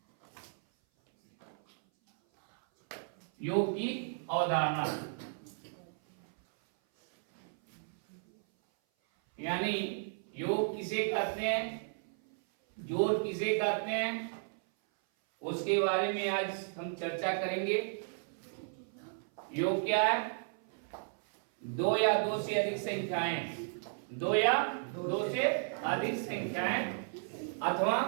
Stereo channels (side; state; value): left; silent; 55 dB below the other